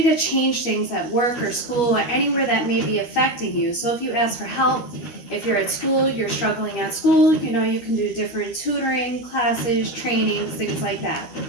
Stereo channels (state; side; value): late; right; 13 ms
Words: to change things at work or school or anywhere that may be affecting you. So if you ask for help, if you're at school, you're struggling at school, you can do different tutoring, classes, trainings, things like that.